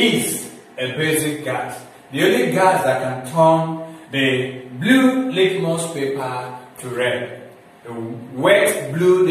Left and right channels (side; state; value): both; identical; correlation 1.00